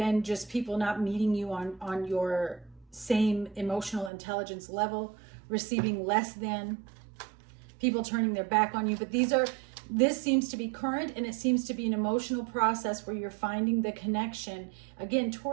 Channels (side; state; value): left; drops out; at 4.1 s